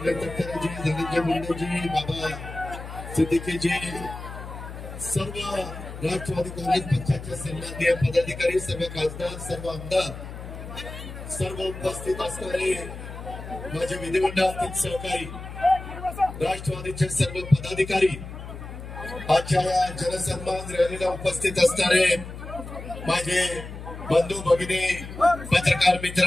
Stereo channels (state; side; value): noise; left; hum, 11 dB below the sound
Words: तटकरेजी, धनंजय मुंडेजी, बाबा सिद्दीकीजी, सर्व राष्ट्रवादी काँग्रेस पक्षाचे सन्माननीय पदाधिकारी, सर्व खासदार, सर्व आमदार, सर्व उपस्थित असणारे माझे विधिमंडळातील सहकारी, राष्ट्रवादीचे सर्व पदाधिकारी, आजच्या या जनसन्मान रॅलीला उपस्थित असणारे माझे बंधू भगिनी, पत्रकार मित्र